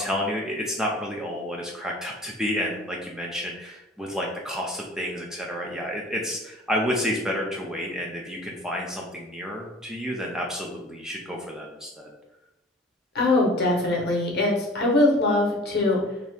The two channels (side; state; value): both; normal; correlation 0.45